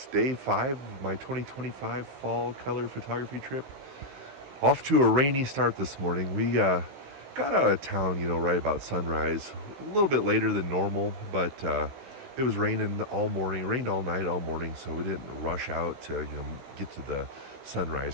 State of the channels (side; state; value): left; late; 15 ms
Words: Day 5 of my 2025 fall color photography trip. Off to a rainy start this morning. We got out of town, right about sunrise. A little bit later than normal, but it was raining all morning. It rained all night, all morning, so we didn't rush out to, get to the